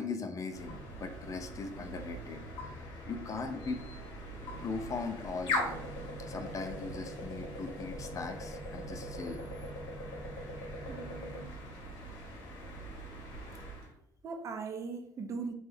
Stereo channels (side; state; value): both; normal; correlation 0.46